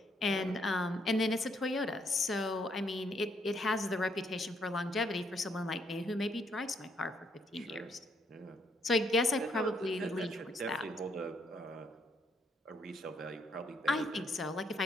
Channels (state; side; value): normal; both; correlation 0.71